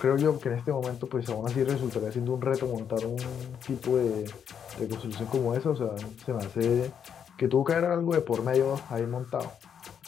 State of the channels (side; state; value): right; quieter; 8.0 dB